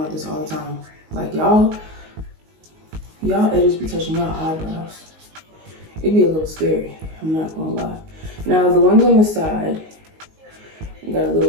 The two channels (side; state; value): left; late; 19 ms